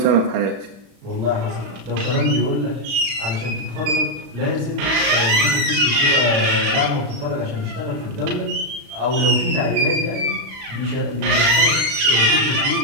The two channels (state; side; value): late; left; 36 ms